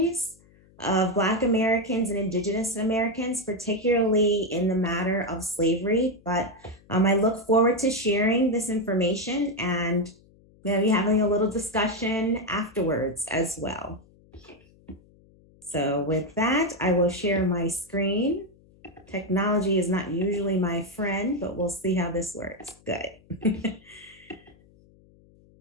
of Black Americans and Indigenous Americans, particularly in the matter of slavery. But I look forward to sharing this information and maybe having a little discussion afterwards as well. So with that, I will share my screen. Technology is not usually my friend, but we'll see how this works. Good.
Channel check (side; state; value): left; noise; hum, 28 dB below the sound